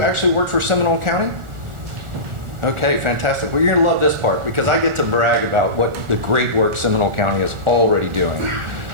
actually work for Seminole County? Okay, fantastic. Well, you're gonna love this part because I get to brag about what the great work Seminole County is already doing.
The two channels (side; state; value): left; late; 1.4 ms